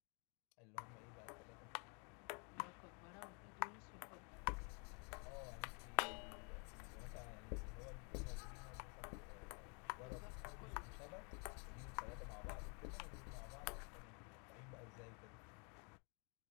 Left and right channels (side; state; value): right; quieter; 36.3 dB